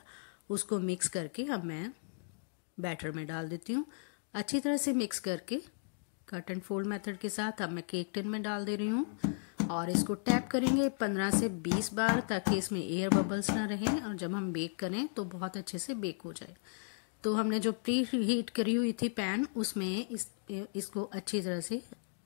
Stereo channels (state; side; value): silent; right; digital silence